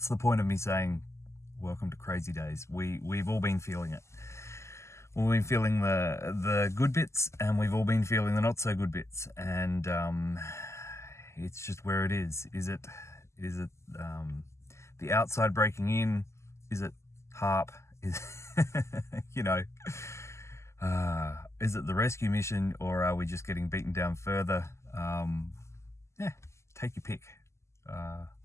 the point of me saying welcome to crazy days? We've all been feeling it. We've been feeling the good bits, and we've all been feeling the not so good bits, and it's just where it is. Is it the outside breaking in? Is it HARP? Is you know, is it the rescue mission, or are we just getting beaten down further? Yeah, take your pick.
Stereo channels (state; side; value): late; right; 0.13 ms